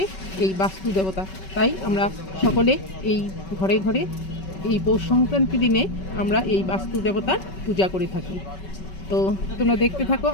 এই বাস্তু দেবতা। তাই আমরা সকলে এই ঘরে ঘরে এই পৌষ সংক্রান্তি দিনে আমরা এই বাস্তু দেবতার পূজা করে থাকি। তো তোমরা দেখতে থাকো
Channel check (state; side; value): late; right; 5.3 ms